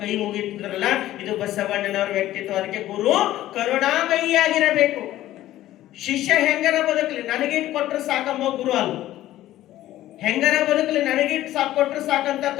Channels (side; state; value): right; quieter; 14.3 dB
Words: ಮುಗಿತಿದ್ರಲ್ಲ, ಇದು ಬಸವಣ್ಣನವರ ವ್ಯಕ್ತಿತ್ವ. ಅದಕ್ಕೆ ಗುರು ಕರುಣಾಮಯಿಯಾಗಿರಬೇಕು. ಶಿಷ್ಯ ಹೆಂಗರ ಬದುಕಲಿ, ನನಗೇನು ಕೊಟ್ಟರೆ ಸಾಕಂಬ ಗುರು ಅಲ್ಲ. ಹೆಂಗರ ಬದುಕಲಿ ನನಗಿಟ್ಟು ಸಾಕು ಕೊಟ್ಟರು